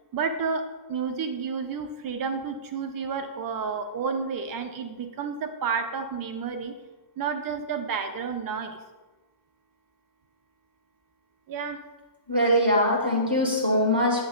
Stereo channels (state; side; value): inverted; both; correlation -0.34